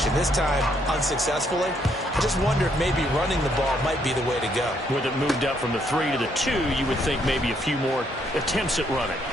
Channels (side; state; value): both; normal; correlation 0.71